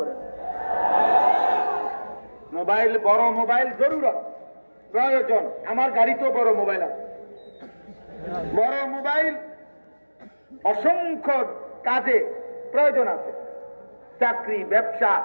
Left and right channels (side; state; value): both; inverted; correlation -1.00